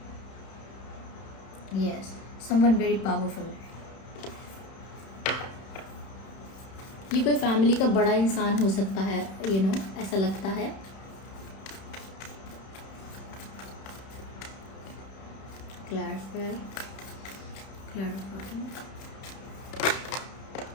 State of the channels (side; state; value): right; late; 31 ms